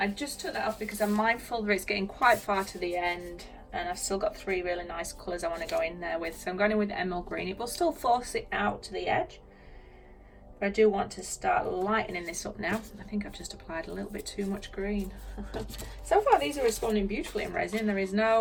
just took that off because I'm mindful that it's getting quite far to the end and I've still got three really nice colours I want to go in there with. So I'm going in with the emerald green. It will still force it out to the edge. But I do want to start lightening this up now. I think I've just applied a little bit too much green. So far these are responding beautifully in resin. There is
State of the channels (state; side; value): identical; both; correlation 1.00